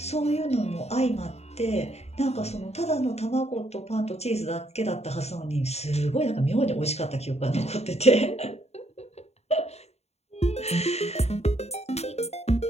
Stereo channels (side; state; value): right; late; 0.31 ms